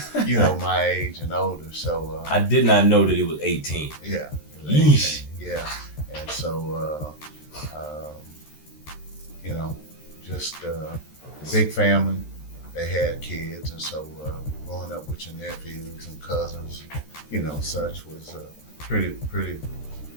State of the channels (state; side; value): late; right; 13 ms